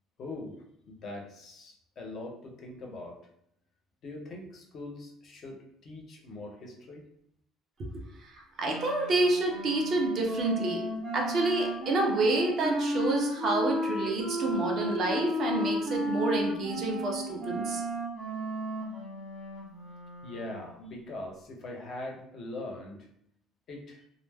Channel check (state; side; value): normal; both; correlation 0.60